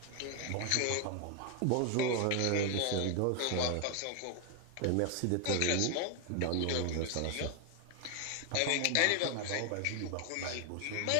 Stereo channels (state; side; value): different; both; correlation 0.01